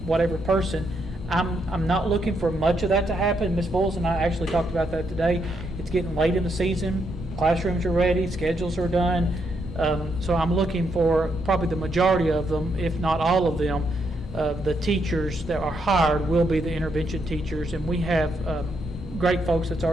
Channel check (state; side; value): normal; both; correlation 0.78